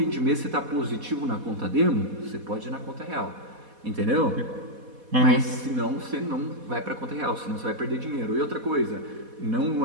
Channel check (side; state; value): left; late; 4.1 ms